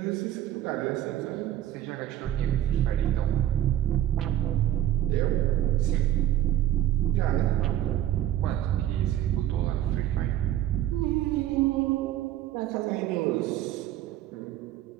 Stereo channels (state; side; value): quieter; left; 12.4 dB